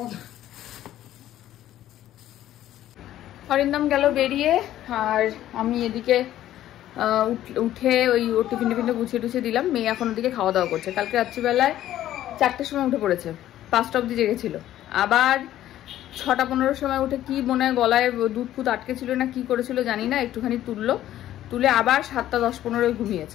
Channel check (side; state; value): right; quieter; 12.9 dB